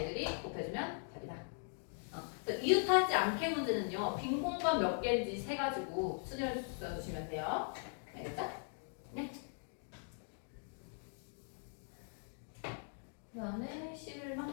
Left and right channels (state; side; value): silent; right; 51 dB below the other